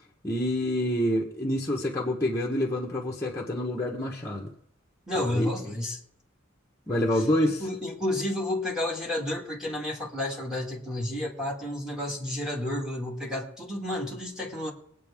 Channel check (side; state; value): both; normal; correlation 0.64